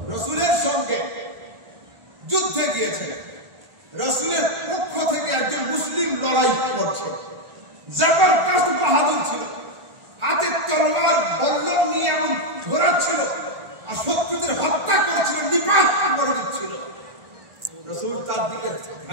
রাসূলের সঙ্গে যুদ্ধে গিয়েছে, রাসূলের পক্ষ থেকে একজন মুসলিম লড়াই করছে, জবরদস্ত বাহাদুর ছিল, হাতে তলোয়ার বল্লম নিয়ে এমন ঝোরাচ্ছিল আর শত্রুদের হত্যা করেছিল, নিপাত করে দিচ্ছিল। রাসূল তার দিকে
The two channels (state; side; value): late; left; 1.4 ms